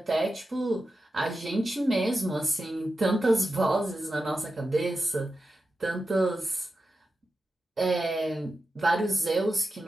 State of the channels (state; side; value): normal; both; correlation 0.91